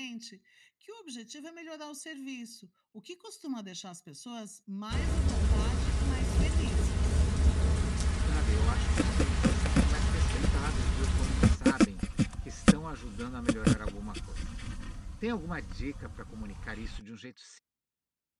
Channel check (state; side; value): identical; both; correlation 1.00